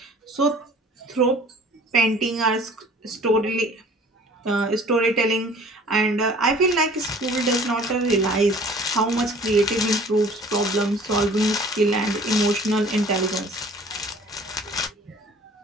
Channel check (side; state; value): both; normal; correlation 0.50